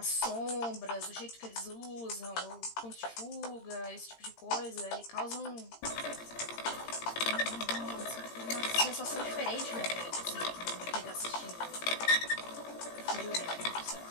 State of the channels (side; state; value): right; late; 18 ms